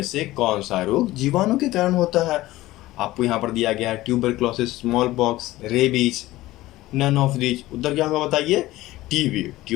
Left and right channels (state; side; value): quieter; right; 17.2 dB